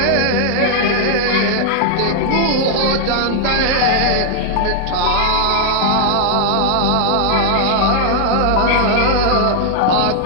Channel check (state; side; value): different; both; correlation 0.00